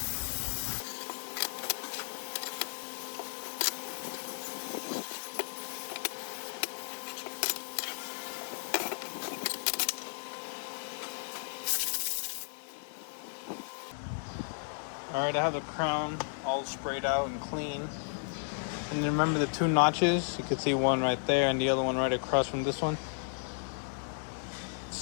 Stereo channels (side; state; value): right; silent; digital silence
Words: Alright, I have the crown all sprayed out and clean. And remember the two notches? You can see one right there and the other one right across from this one.